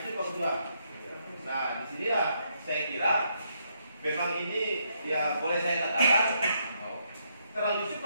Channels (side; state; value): both; inverted; correlation -0.76